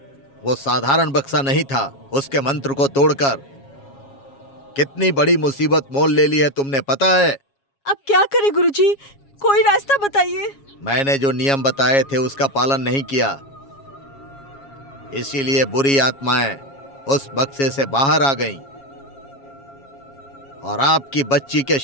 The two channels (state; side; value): late; right; 7.3 ms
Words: वो साधारण बक्सा नहीं था। उसके मंत्र को तोड़कर कितनी बड़ी मुसीबत मोल ले ली है तुमने, पता है? अब क्या करें गुरुजी? कोई रास्ता बताइए। मैंने जो नियम बताए थे उसका पालन नहीं किया, इसीलिए बुरी आत्माएं उस बक्से से बाहर आ गईं और आपकी बच्ची के